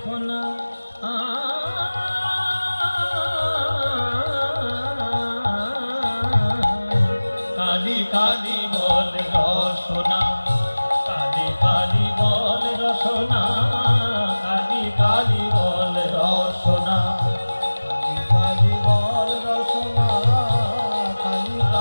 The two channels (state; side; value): inverted; both; correlation -1.00